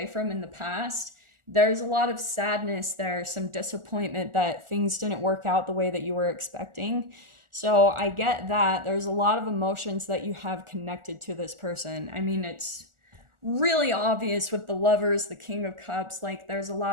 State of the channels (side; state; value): left; late; 1.4 ms